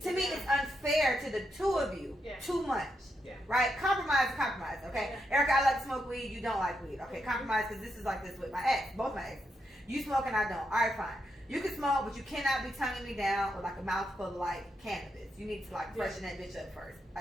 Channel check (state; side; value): normal; both; correlation 0.82